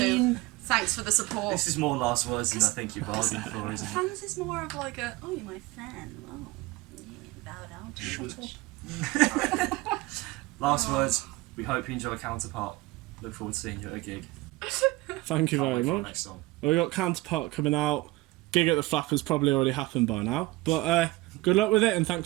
Thanks for the support. This is more last words than I think you bargained for, isn't it? Fans is more of like a, oh, you're my fan. Oh, yeah, bow down to me. Last words. We hope you enjoy Counterpart. Look forward to seeing you at a gig. Thank you Can't very wait for our much. next song. Well, we got Counterpart coming out. Gig at the Flappers probably already happened by now. But good luck with it and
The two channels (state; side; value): quieter; left; 20.6 dB